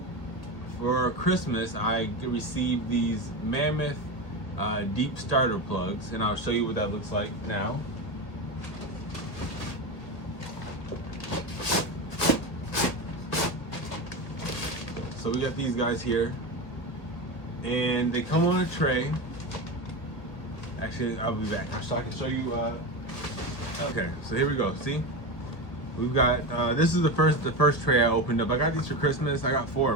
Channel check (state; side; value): late; right; 1.8 ms